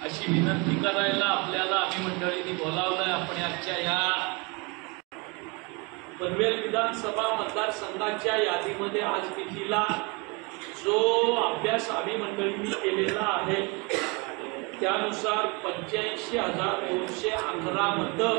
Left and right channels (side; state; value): left; quieter; 29.4 dB